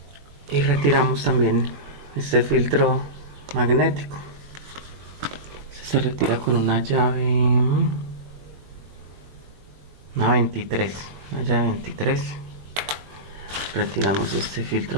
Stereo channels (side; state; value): left; late; 21 ms